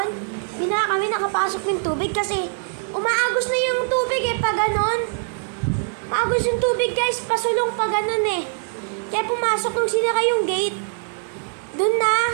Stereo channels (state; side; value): silent; left; 64 dB below the other